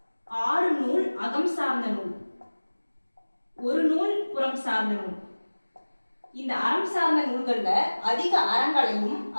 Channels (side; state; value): both; inverted; correlation -1.00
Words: 6 நூல் அகம் சார்ந்த நூல், 1 நூல் புறம் சார்ந்த நூல். இந்த அறம் சார்ந்த நூல்கள்ல அதிக அறங்களையும்